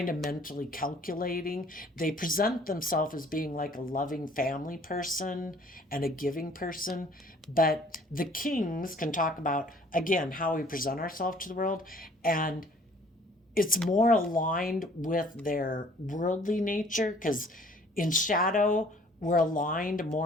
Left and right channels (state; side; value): normal; both; correlation 0.55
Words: of mentally calculating. They present themselves as being like a loving family person and a giving person. But the kings can talk about, again, how we present ourselves to the world. And it's more aligned with their worldly nature, because in shadow, we're aligned